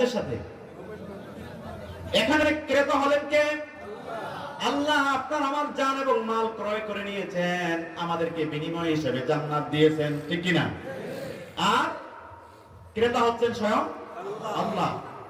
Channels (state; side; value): identical; both; correlation 1.00